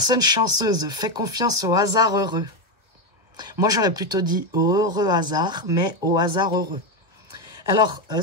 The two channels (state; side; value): late; left; 1.3 ms